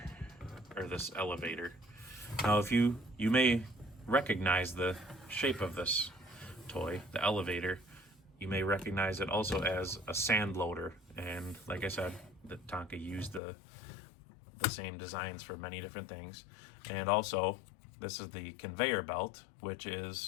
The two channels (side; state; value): right; drops out; at 13.4 s